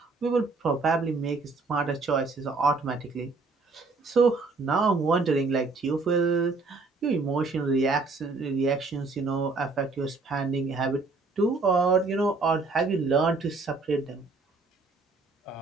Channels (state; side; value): quieter; left; 3.8 dB